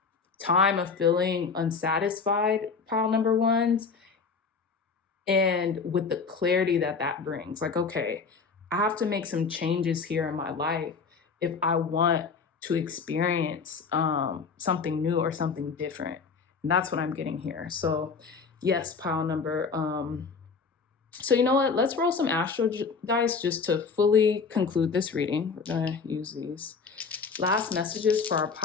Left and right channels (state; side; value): quieter; right; 5.1 dB